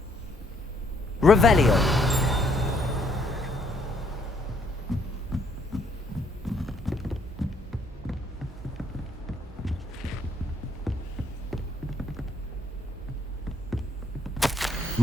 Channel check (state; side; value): normal; both; correlation 0.68